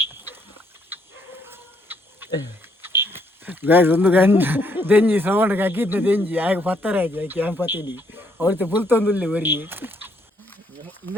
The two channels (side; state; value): both; normal; correlation 0.71